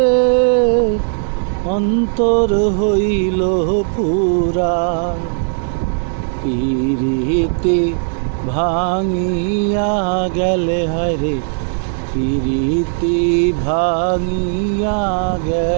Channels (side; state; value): left; silent; digital silence